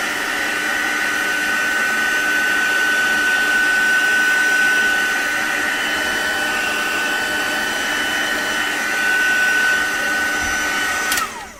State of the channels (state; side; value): identical; both; correlation 1.00